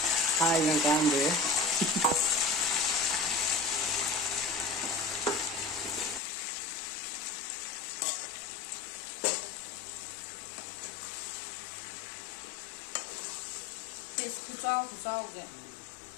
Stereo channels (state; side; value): drops out; right; at 6.2 s